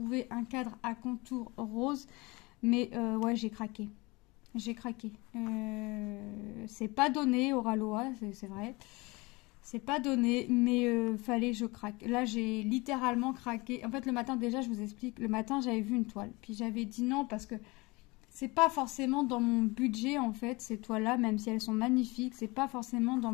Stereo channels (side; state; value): right; quieter; 24.4 dB